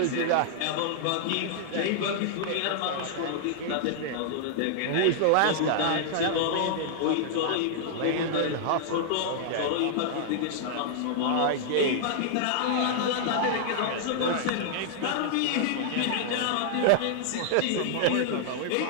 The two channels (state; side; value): different; both; correlation -0.01